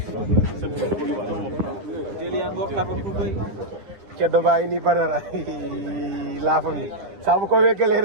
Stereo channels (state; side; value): late; left; 9.7 ms